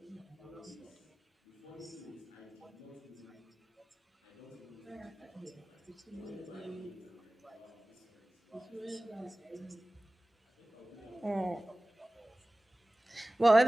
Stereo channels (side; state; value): both; normal; correlation 0.98